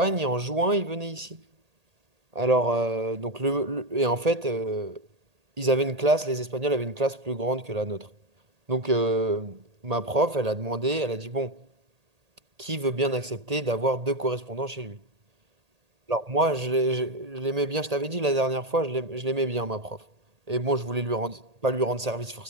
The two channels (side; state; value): left; late; 1.8 ms